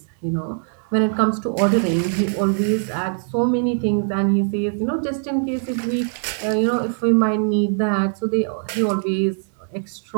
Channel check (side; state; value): left; silent; 65 dB below the other